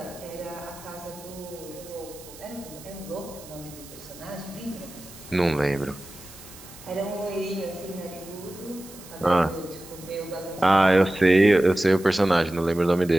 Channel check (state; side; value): noise; right; hiss, 18 dB below the sound